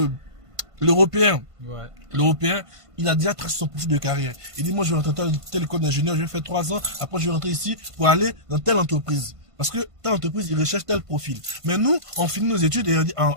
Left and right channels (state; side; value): late; left; 1.5 ms